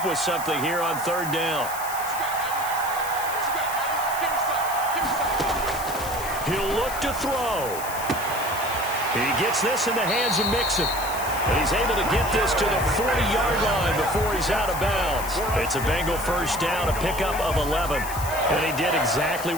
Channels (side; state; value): left; noise; hiss, 10 dB below the sound